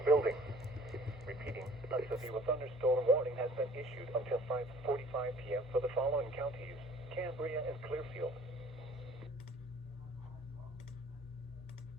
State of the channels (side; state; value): both; normal; correlation 0.52